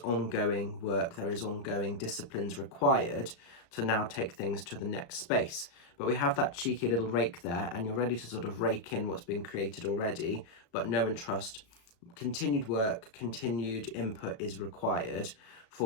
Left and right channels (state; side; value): late; right; 35 ms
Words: ongoing work, there is ongoing disciplines required to now take things to the next space. But we have that cheeky little rake there, and you're ready to sort of rake in what's been created already, but know and trust continued work, continued input is required